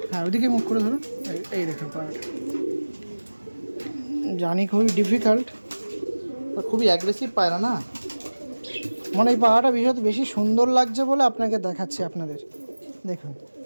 হ্যাঁ ওইদিকে মুখ করে ধরুন। এই দেখুন পায়রাটা, জানি খুবই ডিফিকাল্ট, খুবই অ্যাগ্রেসিভ পায়রা না, মানে এই পায়রাটা বিষয়ত বেশি সুন্দর লাগছে বলে আপনাকে দেখাচ্ছি আপনাদের। দেখুন,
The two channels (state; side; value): inverted; both; correlation -1.00